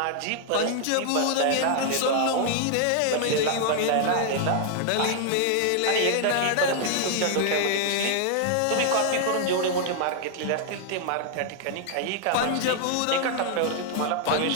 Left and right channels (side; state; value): both; different; correlation 0.00